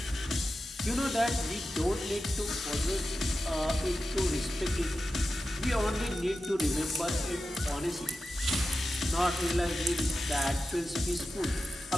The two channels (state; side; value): normal; both; correlation 0.92